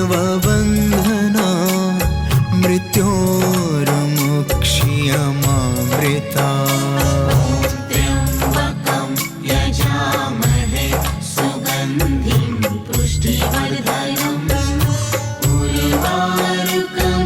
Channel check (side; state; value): both; identical; correlation 1.00